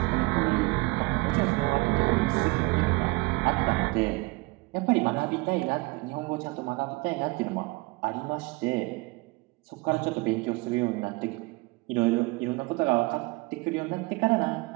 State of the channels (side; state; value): left; quieter; 24.8 dB